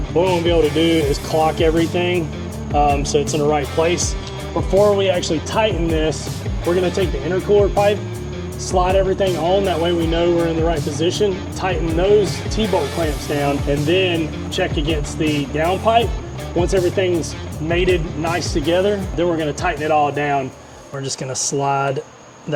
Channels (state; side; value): identical; both; correlation 1.00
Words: What we want to be able to do is clock everything so it's in the right place. Before we actually tighten this, we're going to take the intercooler pipe, slide everything on, that way we know we're in the right position, tighten those T-bolt clamps down, and then check against the down pipe. Once everything's mated nice together, then we're going to tighten it all down. We're just going to slide